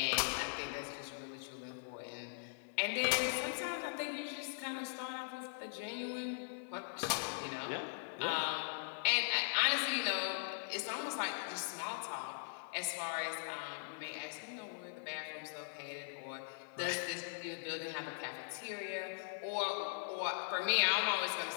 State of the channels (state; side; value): silent; right; 51 dB below the other